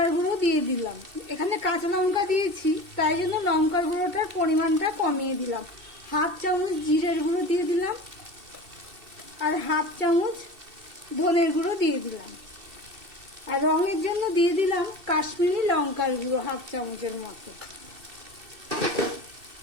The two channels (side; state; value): left; late; 2.7 ms